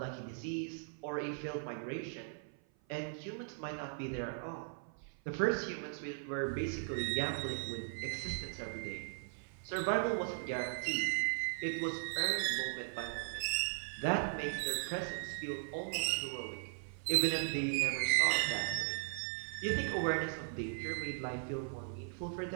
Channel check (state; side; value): silent; left; 52 dB below the other